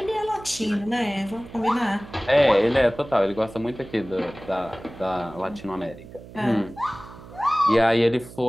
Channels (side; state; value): right; noise; hum, 17 dB below the sound